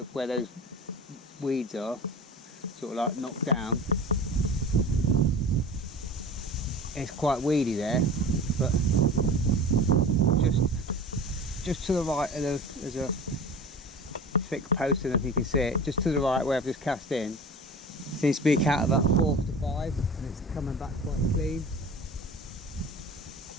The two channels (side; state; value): both; normal; correlation 0.36